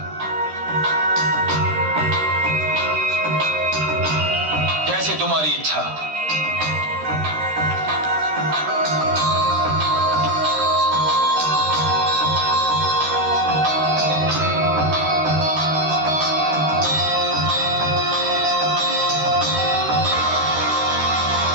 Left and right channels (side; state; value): left; late; 13 ms